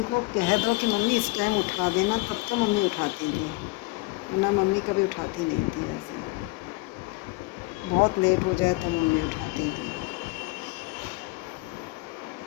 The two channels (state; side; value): quieter; right; 22.1 dB